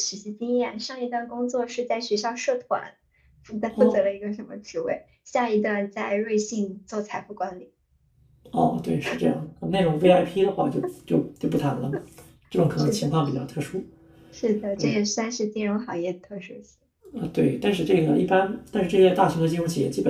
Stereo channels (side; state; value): both; identical; correlation 1.00